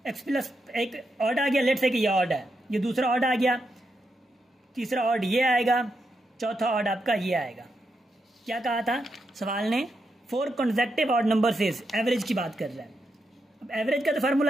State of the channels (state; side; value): normal; both; correlation 0.84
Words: x प्लस एक ऑड आ गया, लेट्स से कि ये ऑड है, ये दूसरा ऑड आ गया, तीसरा ऑड ये आएगा, चौथा ऑड आपका ये आएगा। क्या कहा था सवाल ने, 4 consecutive ऑड नंबर से एवरेज की बात कर रहा है। अब एवरेज का तो